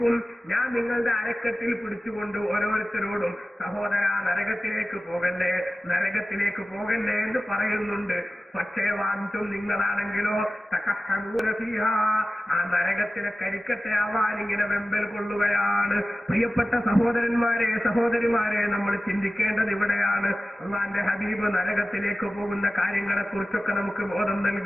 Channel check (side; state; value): both; normal; correlation 0.95